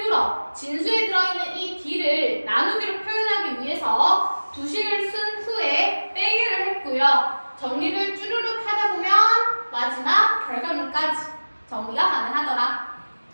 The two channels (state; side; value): inverted; both; correlation -1.00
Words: 진수에 들어있는 이 D를 나누기로 표현하기 위해서 두식을 쓴 후에 빼기를 했고요. 정리를 쭈루룩 하다 보면 마지막 결과물까지 정리가 가능하더라.